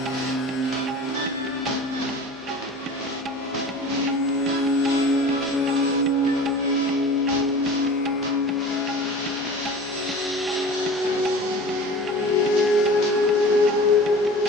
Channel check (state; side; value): normal; both; correlation 0.38